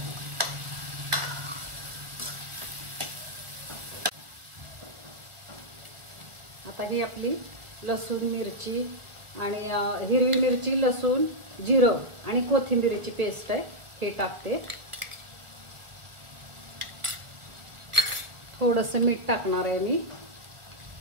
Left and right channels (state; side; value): late; left; 1.6 ms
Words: आता ही आपली लसूण, मिरची आणि हिरवी मिरची, लसूण, जिरं आणि कोथिंबीरची पेस्ट आहे, हे टाकते. थोडंसं मीठ टाकणार आहे मी.